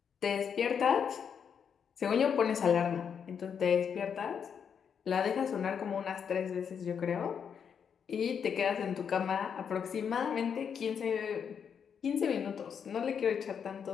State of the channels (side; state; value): right; quieter; 7.3 dB